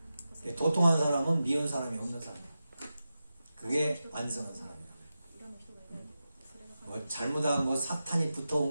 도통한 사람은 미운 사람이 없는 사람이에요. 그게 완성한 사람이에요. 뭐 잘못한 거, 사탄이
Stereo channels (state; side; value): inverted; both; correlation -0.92